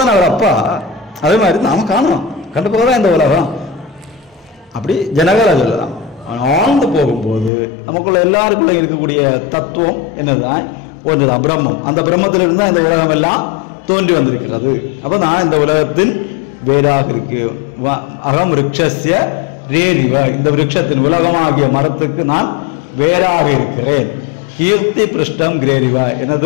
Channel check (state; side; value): drops out; right; at 7.5 s